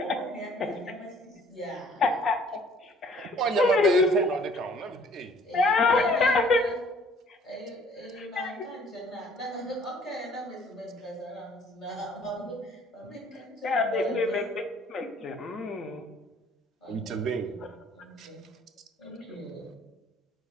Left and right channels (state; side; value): normal; both; correlation 0.56